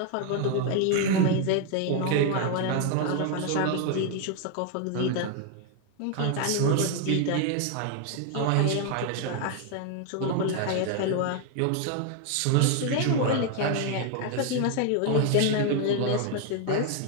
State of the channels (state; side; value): different; both; correlation 0.01